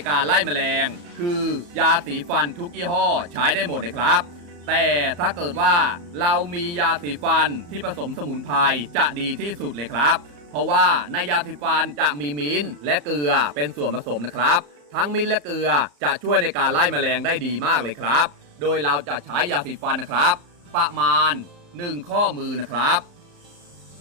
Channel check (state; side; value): late; left; 34 ms